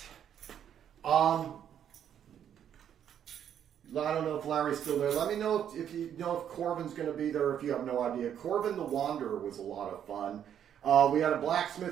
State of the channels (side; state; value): left; quieter; 9.4 dB